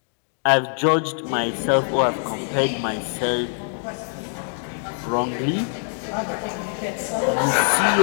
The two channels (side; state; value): right; silent; digital silence